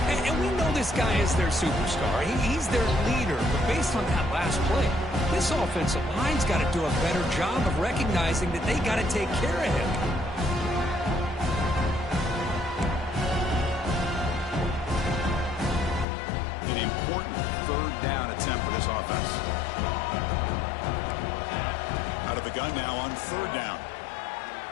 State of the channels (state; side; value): drops out; right; at 16.1 s